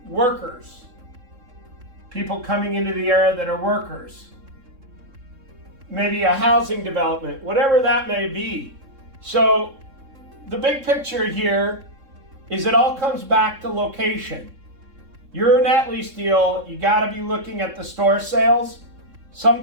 workers. People coming into the area that are workers. Maybe a housing development, whatever that may be. So the big picture here is it all comes back to location. Your net lease deal, you got to be looking at the store sales.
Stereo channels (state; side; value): late; left; 3.7 ms